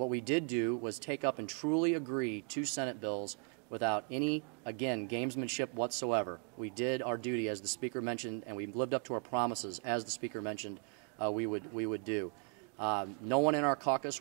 we did do was take up and truly agree to Senate bills without any, again, gamesmanship whatsoever. We did our duty, as the Speaker mentioned, and we lived up to our promises, as the Speaker mentioned, we would do. No one in our caucus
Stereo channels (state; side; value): quieter; left; 38.4 dB